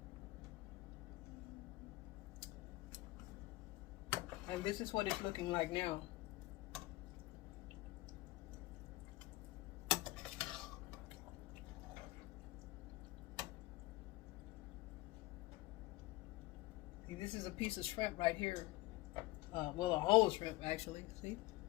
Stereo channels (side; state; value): right; quieter; 19.4 dB